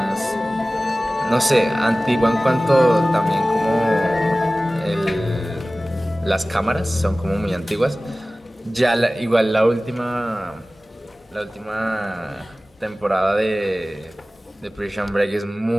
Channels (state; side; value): normal; both; correlation 0.97